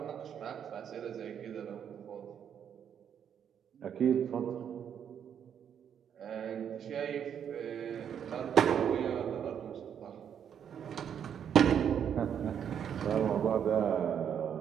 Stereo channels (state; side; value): quieter; left; 8.5 dB